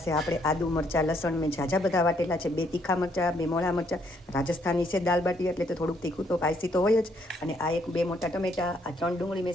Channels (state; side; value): normal; both; correlation 0.70